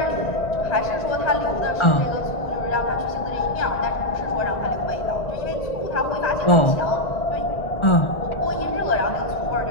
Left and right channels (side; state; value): right; late; 1.4 ms